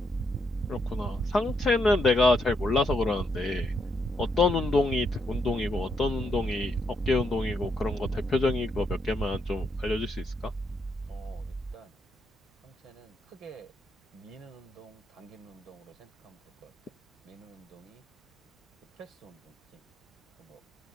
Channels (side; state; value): both; normal; correlation 0.78